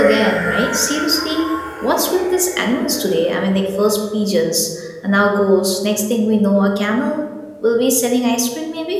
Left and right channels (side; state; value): both; identical; correlation 1.00